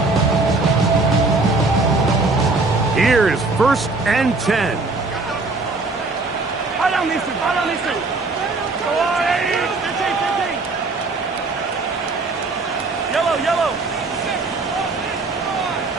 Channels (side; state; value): left; quieter; 3.5 dB